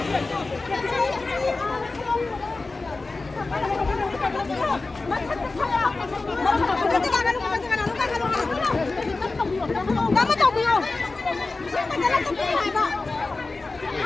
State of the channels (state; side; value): quieter; right; 3.6 dB